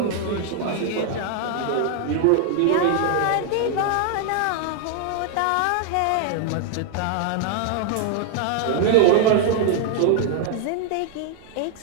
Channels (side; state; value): both; different; correlation 0.00